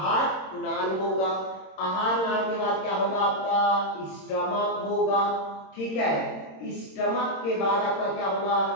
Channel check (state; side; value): late; right; 26 ms